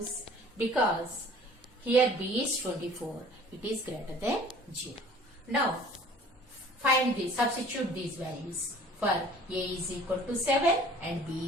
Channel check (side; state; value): both; normal; correlation 0.50